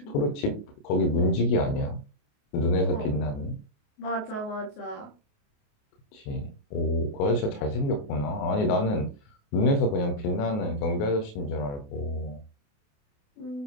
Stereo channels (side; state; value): right; late; 28 ms